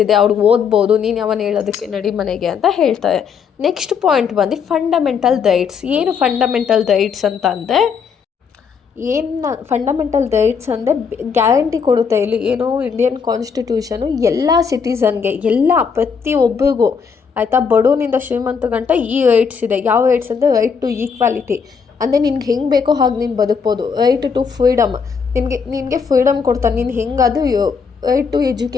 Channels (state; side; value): quieter; right; 6.2 dB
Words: ಇದೆ, ಅವ್ರಿಗೆ ಓದ್ಬೋದು, ನೀನು ಯಾವನು ಹೇಳೋದಕ್ಕೆ, ನಡಿ ಮನೆಗೆ ಅಂತ ಹೇಳ್ತಾರೆ. ನೆಕ್ಸ್ಟ್ ಪಾಯಿಂಟ್ ಬಂದು ಫಂಡಮೆಂಟಲ್ ರೈಟ್ಸ್. ಏನು ಫಂಡಮೆಂಟಲ್ ರೈಟ್ಸ್ ಅಂತ ಅಂದರೆ, ಫಂಡಮೆಂಟಲ್ ರೈಟ್ಸ್ ಅಂದರೆ ಗ್ಯಾರಂಟಿ ಕೊಡುತ್ತೆ. ಇಲ್ಲಿ ಏನು ಇಂಡಿಯನ್ ಕಾನ್ಸ್ಟಿಟ್ಯೂಷನು ಎಲ್ಲ ಸಿಟಿಸನ್ಗೆ, ಪ್ರತಿಯೊಬ್ಬರಿಗೂ ಆಯಿತಾ, ಬಡವನಿಂದ ಶ್ರೀಮಂತ ಗಂಟ ಈ ರೈಟ್ಸ್ ಇದೆ. ಯಾವ ರೈಟ್ಸ್ ಅಂದರೆ, ರೈಟ್ ಟು ಈಕ್ವಾಲಿಟಿ. ಅಂದರೆ ನಿನ್ಗೆ ಹೆಂಗೆ ಬೇಕೋ ಹಾಗೆ ನೀನು ಬದುಕ್ಬೋದು. ರೈಟ್ ಟು ಫ್ರೀಡಮ್, ನಿನಗೆ ಫ್ರೀಡಮ್ ಕೊಡ್ತಾನೆ. ನೀನು ಹೆಂಗಾದರೂ ರೈಟ್ ಟು